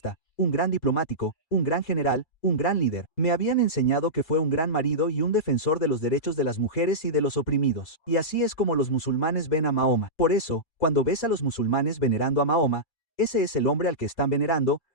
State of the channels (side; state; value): right; late; 4.4 ms